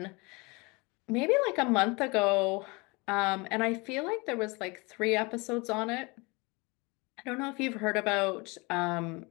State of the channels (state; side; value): quieter; right; 26.9 dB